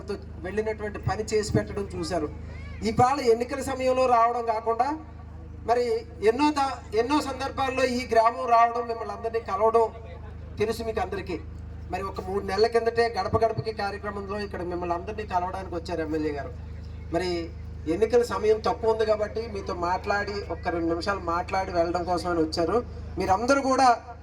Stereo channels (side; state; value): both; identical; correlation 1.00